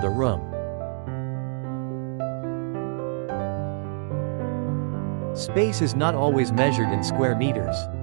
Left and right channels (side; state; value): left; silent; digital silence